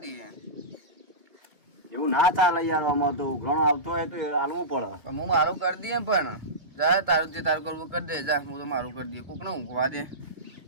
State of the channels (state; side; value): late; left; 2.3 ms